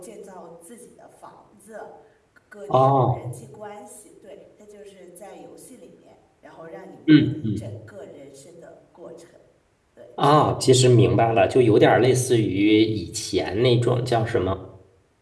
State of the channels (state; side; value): identical; both; correlation 1.00